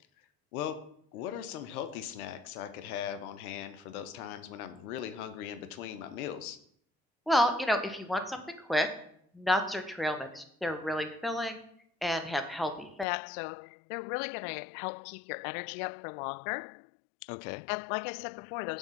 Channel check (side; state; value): right; drops out; at 13.1 s